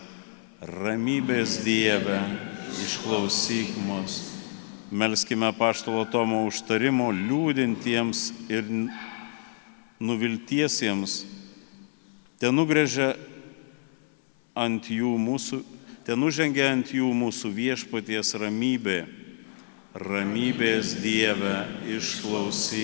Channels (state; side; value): silent; right; 60 dB below the other